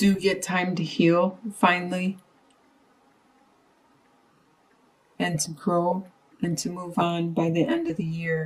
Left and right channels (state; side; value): identical; both; correlation 1.00